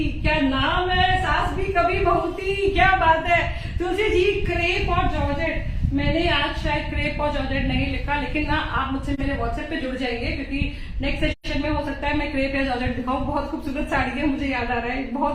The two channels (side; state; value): both; identical; correlation 1.00